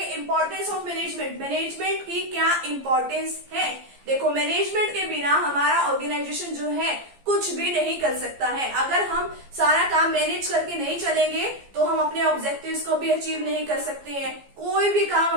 Importance of management. मैनेजमेंट की क्या इंपॉर्टेंस है? देखो, मैनेजमेंट के बिना हमारा ऑर्गेनाइजेशन जो है कुछ भी नहीं कर सकता है। अगर हम सारा काम मैनेज करके नहीं चलेंगे तो हम अपने ऑब्जेक्टिव्स को भी अचीव नहीं कर सकते हैं। कोई भी काम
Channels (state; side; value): late; left; 15 ms